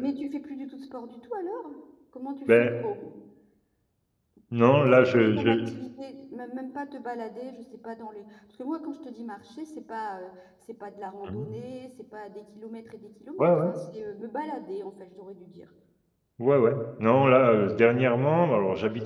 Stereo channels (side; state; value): both; identical; correlation 1.00